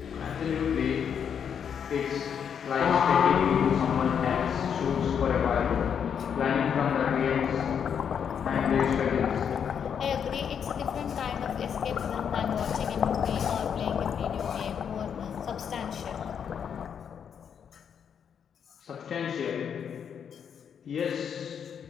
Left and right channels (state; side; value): quieter; right; 7.7 dB